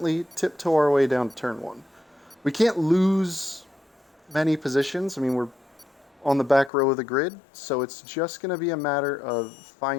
tiptoe our way down to turn one. We can't lose many positions. I mean, we're on the back row of the grid, so it's just going to be a matter of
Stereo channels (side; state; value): right; drops out; at 6.7 s